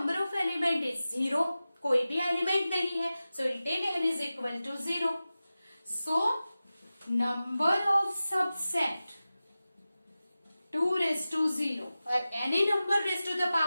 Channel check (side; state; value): both; inverted; correlation -0.95